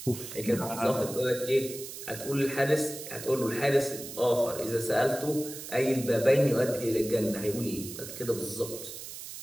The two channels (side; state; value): right; noise; hiss, 11 dB below the sound